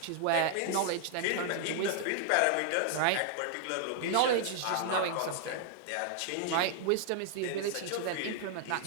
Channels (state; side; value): different; both; correlation -0.01